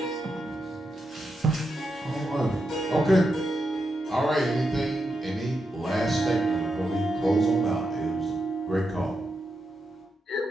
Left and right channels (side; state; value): both; normal; correlation 0.85